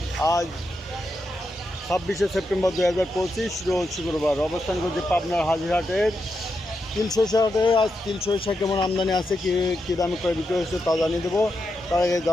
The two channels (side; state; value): both; normal; correlation 0.85